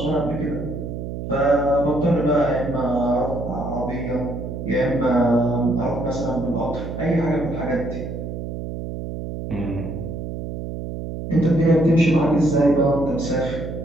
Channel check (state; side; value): noise; right; hum, 6 dB below the sound